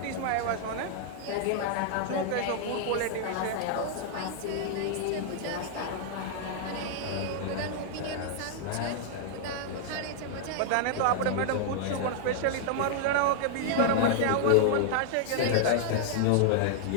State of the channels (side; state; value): both; different; correlation -0.01